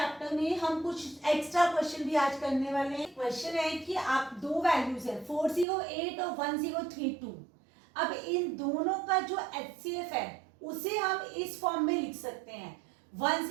में हम कुछ एक्स्ट्रा क्वेश्चन भी आज करने वाले हैं। क्वेश्चन है कि आप दो वैल्यूज है 408 और 1032, अब इन दोनों का जो HCF है उसे हम इस फॉर्म में लिख सकते हैं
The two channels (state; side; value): drops out; left; at 5.7 s